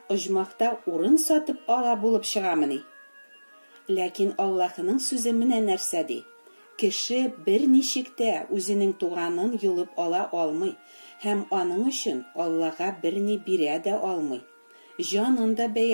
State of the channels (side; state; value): both; inverted; correlation -1.00